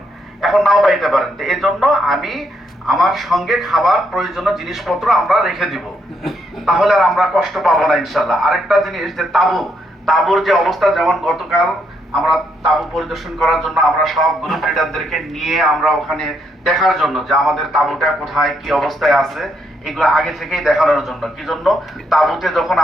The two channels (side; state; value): both; normal; correlation 0.76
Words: এখন নাও পাইতে পারেন। তো এই জন্য আমি আমার সঙ্গে খাবার প্রয়োজনীয় জিনিসপত্র আমরা রেখে দিব, তাহলে আর আমরা কষ্ট পাবো না ইনশাল্লাহ। আরেকটা জিনিস যে তাঁবুর যে অবস্থা, যেমন গতকাল আমরা তাঁবু পরিদর্শন করার জন্য আমরা সব গ্রুপ লিডারদেরকে নিয়ে আমরা ওখানে দেখার জন্য যে আমাদের তাঁবুটা কোথায় কি অবস্থায় আছে, এগুলো আগে থেকেই দেখানোর জন্য। কি জন্য? তাঁবুতে যখন